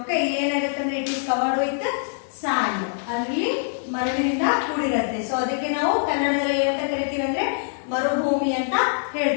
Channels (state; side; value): silent; right; 63 dB below the other